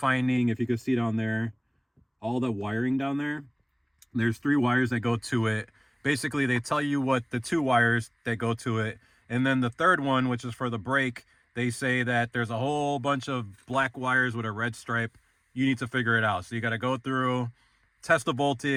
if you can see down there, all the wiring down there, there's 3 wires that go to it. Basically, they tell you what the 2 wires that go to it, and then the third one, which is for the brake, they say that there's a whole bunch of black wires with a red stripe. You need to figure it out. So you got to go through, test the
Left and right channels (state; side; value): identical; both; correlation 1.00